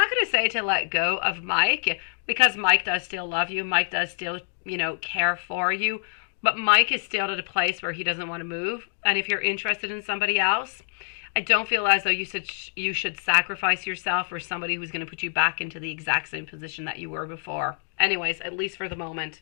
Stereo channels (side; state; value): right; silent; 61 dB below the other